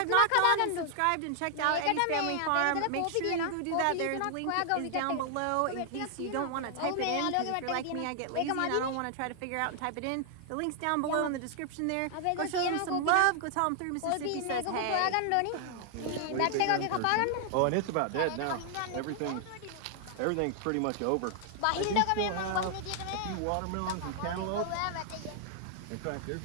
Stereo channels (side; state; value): both; different; correlation 0.00